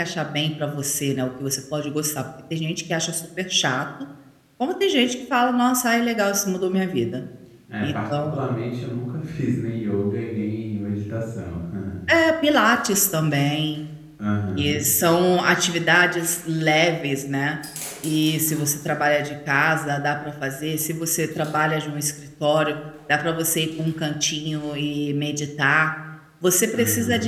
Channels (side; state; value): both; identical; correlation 1.00